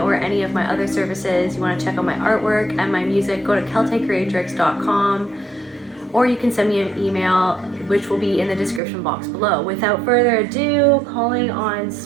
any of my other services, you want to check out my artwork and my music, go to celtaecreatrix.com, or you can send me an email, which will be in the description box below. Without further ado, calling on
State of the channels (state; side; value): drops out; left; at 8.8 s